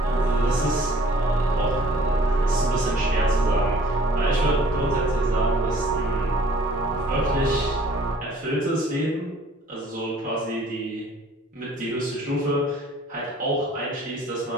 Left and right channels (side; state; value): both; normal; correlation 0.55